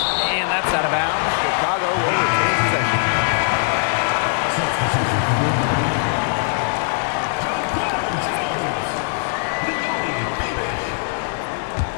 that's out of bounds. Chicago will retain possession. Substitution for wnBA.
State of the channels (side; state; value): right; silent; digital silence